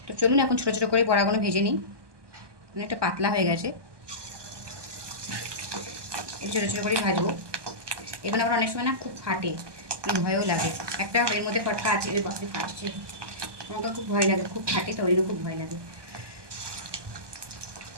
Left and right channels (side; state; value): left; late; 1.2 ms